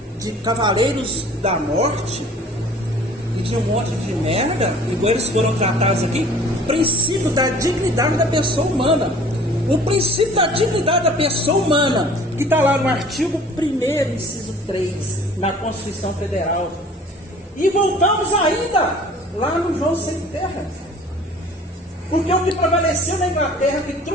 de cavaleiros da morte e de um monte de merda, igual eles foram tratados aqui? O princípio da dignidade da pessoa humana. O princípio da dignidade da pessoa humana, que está lá no artigo 1º, inciso 3, na Constituição Federal. E voltamos ainda lá no João Sem Terra. Porque o que prevaleceu na Inglaterra, que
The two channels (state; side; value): normal; both; correlation 0.49